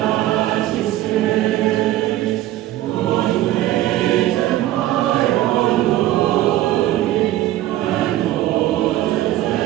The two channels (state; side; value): quieter; left; 14.6 dB